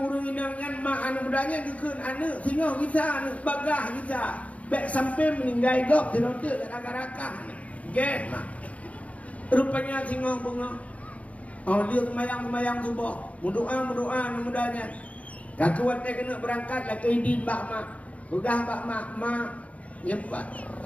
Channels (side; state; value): right; late; 0.067 ms